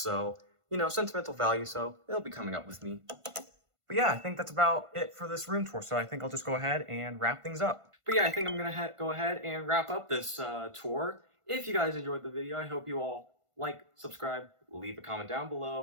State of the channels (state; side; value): late; left; 1.5 ms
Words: you know, sentimental value, so it'll be coming up with me. But yeah, I think that's about it for this room tour, so I think I'll just go ahead and wrap things up. But yeah, I think I'm gonna go ahead and wrap up this tour. If you guys enjoyed the video, I hope you all like, subscribe, leave a comment down